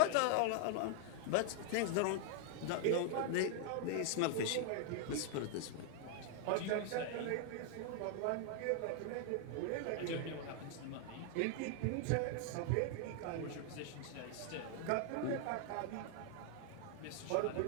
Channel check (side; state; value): both; different; correlation 0.00